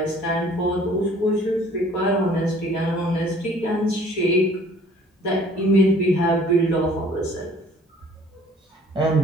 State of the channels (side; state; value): both; normal; correlation 0.54